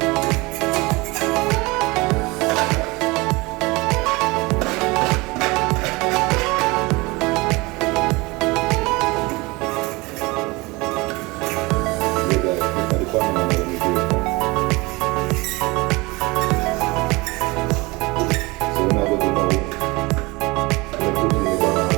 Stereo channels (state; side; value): quieter; left; 24.0 dB